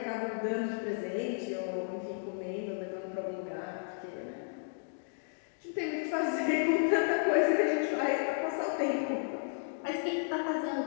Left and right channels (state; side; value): silent; right; digital silence